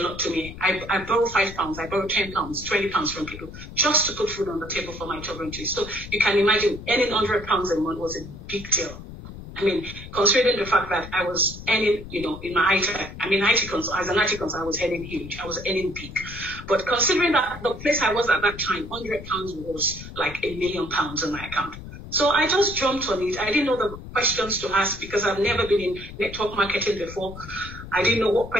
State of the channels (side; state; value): left; noise; rumble, 13 dB below the sound